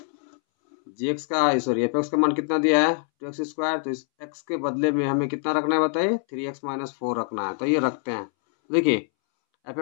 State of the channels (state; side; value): silent; right; 62 dB below the other